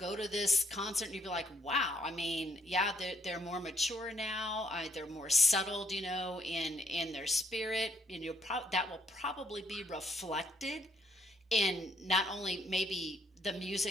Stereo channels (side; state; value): both; normal; correlation 0.67